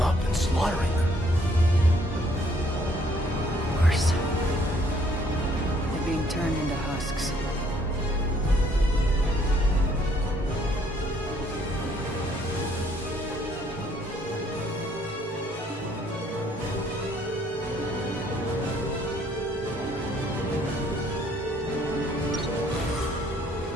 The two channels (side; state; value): both; normal; correlation 0.64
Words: up and slaughtering them. Worse. They're being turned into husks.